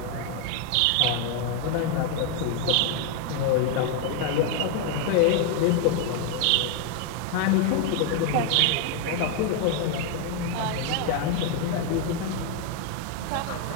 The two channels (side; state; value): both; different; correlation 0.01